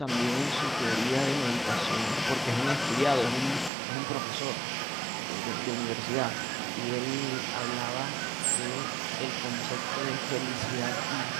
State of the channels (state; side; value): drops out; left; at 3.7 s